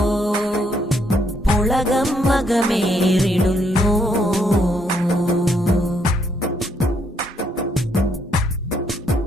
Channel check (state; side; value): normal; both; correlation 0.72